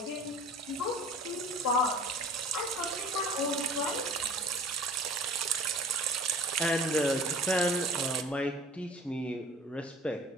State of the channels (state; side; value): normal; both; correlation 0.44